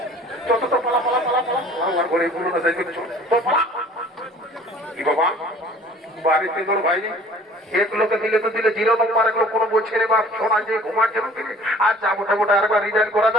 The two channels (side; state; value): both; normal; correlation 0.50